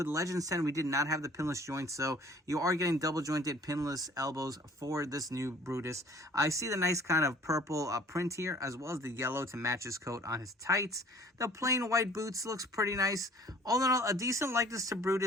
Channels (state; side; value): normal; both; correlation 0.52